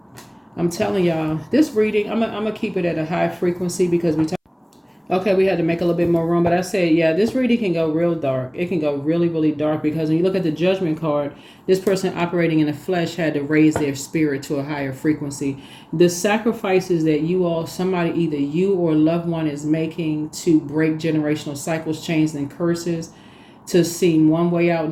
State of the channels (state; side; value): identical; both; correlation 1.00